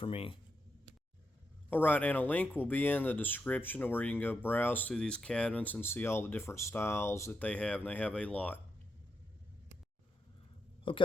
me. Alright, and a link will be in the description where you can go browse through these cabinets and see all the different styles that they have, and they have a lot.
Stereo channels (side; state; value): both; normal; correlation 0.84